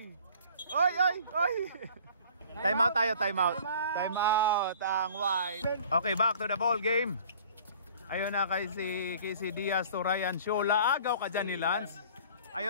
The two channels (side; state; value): both; inverted; correlation -0.49